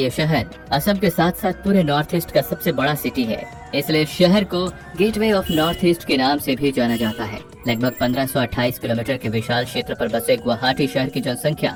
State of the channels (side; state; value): both; identical; correlation 1.00